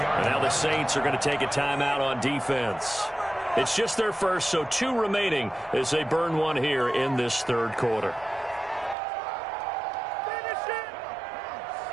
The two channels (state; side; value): drops out; left; at 9.0 s